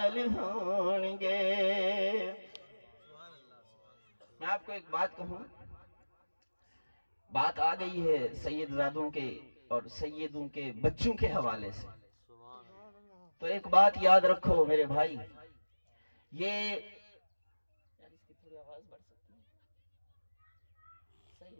ہون گے میں آپ کو ایک بات کہوں بات آ گئی ہے سید زادوں کے اور سیدوں کے بچوں کے حوالے سے تو ایک بات یاد رکھو میرے بھائی یہ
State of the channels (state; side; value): inverted; both; correlation -1.00